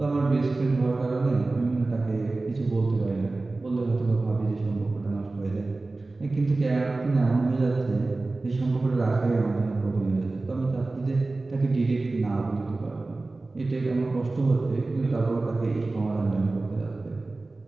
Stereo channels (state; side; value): quieter; left; 3.3 dB